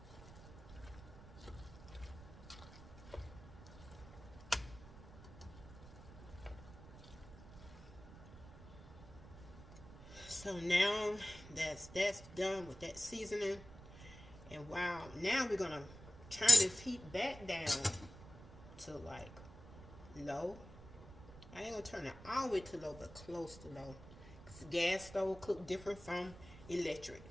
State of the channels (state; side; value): noise; right; rumble, 16 dB below the sound